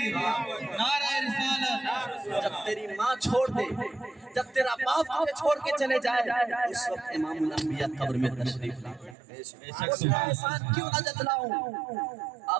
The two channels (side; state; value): left; drops out; at 9.2 s